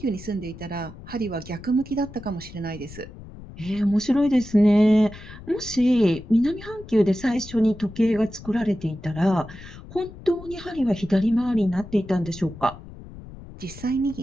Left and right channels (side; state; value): left; noise; rumble, 16 dB below the sound